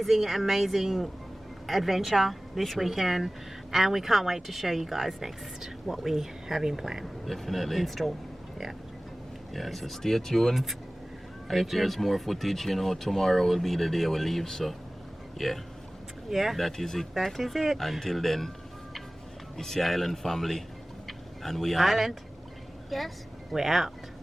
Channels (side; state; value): both; normal; correlation 0.98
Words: adventure this weekend, and we can't wait to show you guys next what we have in plan. Definitely. In store. Yeah. Yeah, so stay tuned. And if there's more footage, tomorrow will be the day we leave, so yeah. Yeah. That is it. That is it. Until then, it's the Island family, and we are. Island. Yes. We're out.